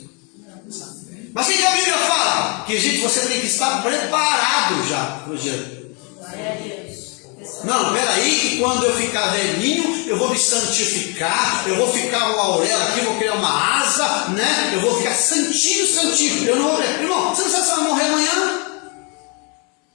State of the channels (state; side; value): quieter; right; 33.7 dB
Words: Mas o que a Bíblia fala? Que, gente, você tem que estar preparado já para o dia. Glória a Deus. Não, peraí, que quando eu ficar velhinho, eu vou me santificar, eu vou ficar uma auréola aqui, vou criar uma asa, né? Eu vou ficar santinho, santinho. Eu não vou morrer. Irmão, você não sabe se vai morrer amanhã?